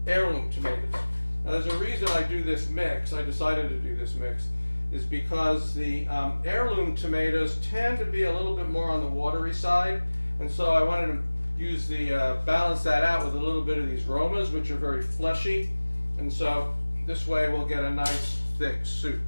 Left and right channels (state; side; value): inverted; both; correlation -1.00